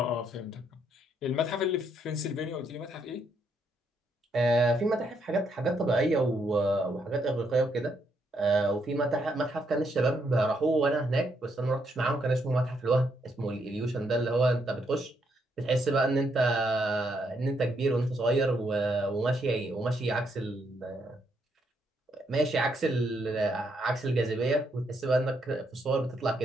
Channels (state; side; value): normal; both; correlation 0.76